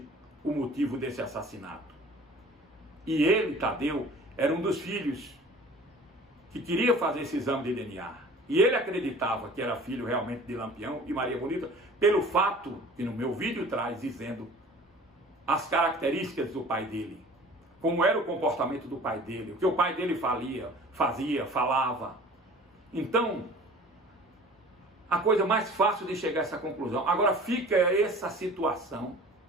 o motivo desse assassinato. E ele, Tadeu, era um dos filhos que queria fazer esse exame de DNA. E ele acreditava que era filho realmente de Lampião e Maria Bonita, pelo fato que no meu vídeo traz dizendo as características do pai dele, como era o comportamento do pai dele, o que o pai dele fazia, falava. Então, a coisa mais fácil de chegar a essa conclusão. Agora fica essa situação,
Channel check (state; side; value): normal; both; correlation 0.45